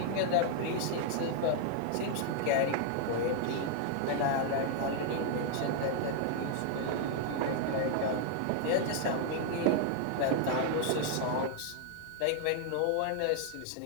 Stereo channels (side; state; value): both; different; correlation 0.00